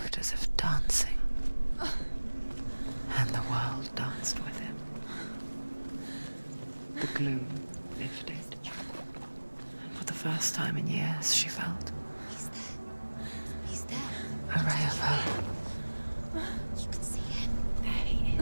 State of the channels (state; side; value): inverted; both; correlation -1.00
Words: as if dancing, and the world danced with him. The gloom lifted, and for the first time in years she felt He's there. He's there. a ray of hope. You can see him. There he